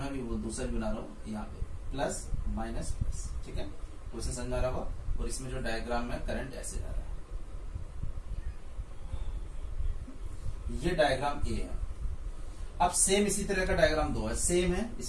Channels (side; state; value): both; identical; correlation 1.00